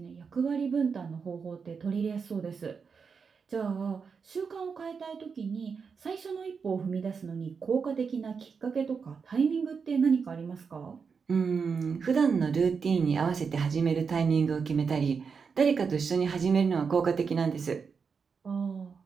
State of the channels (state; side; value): quieter; left; 5.7 dB